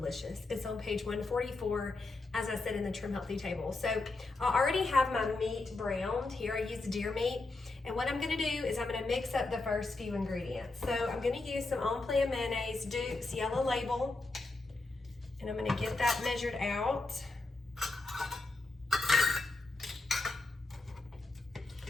It's on page 144, as I said, in the Trim Healthy Table. So I already have my meat browned. Here I use deer meat. And what I'm going to do is I'm going to mix up the first few ingredients. So I'm going to use some On Plan mayonnaise, Duke's yellow label. And I'm going to get that measured out.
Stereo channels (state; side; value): quieter; right; 3.3 dB